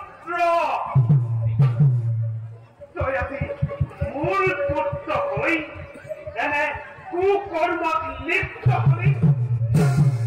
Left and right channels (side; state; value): both; identical; correlation 1.00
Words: দয়াতে মূল পুত্র হই এনে কুকর্মত লিপ্ত হই